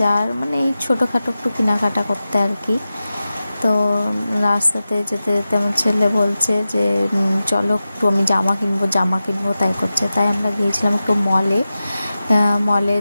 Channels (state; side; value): inverted; both; correlation -0.94